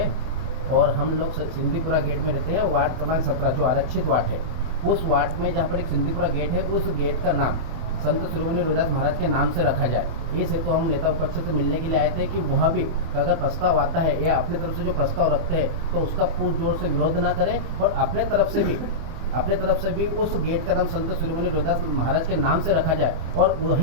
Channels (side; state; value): left; late; 25 ms